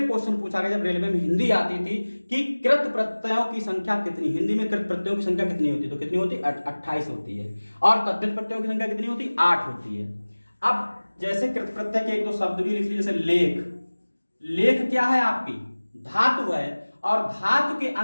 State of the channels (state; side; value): inverted; both; correlation -1.00